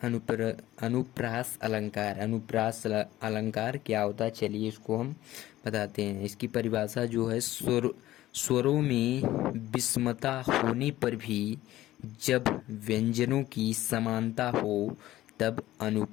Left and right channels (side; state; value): right; quieter; 15.0 dB